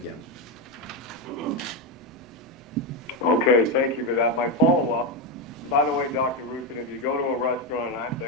Okay, thank you for that. My follow-up, by the way, Dr. Roussin, if you go to a restaurant and I'm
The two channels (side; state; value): both; normal; correlation 0.09